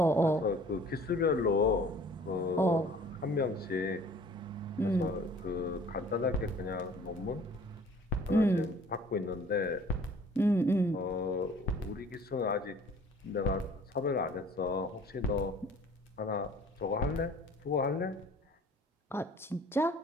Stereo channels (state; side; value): normal; both; correlation 0.52